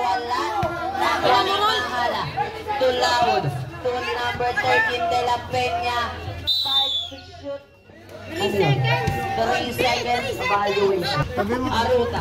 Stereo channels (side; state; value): both; identical; correlation 1.00